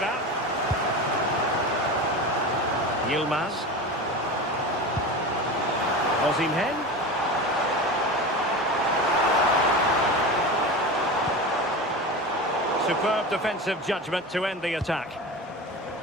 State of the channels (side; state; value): both; normal; correlation 0.28